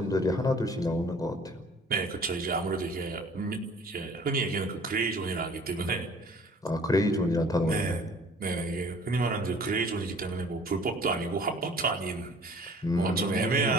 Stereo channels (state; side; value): normal; both; correlation 0.51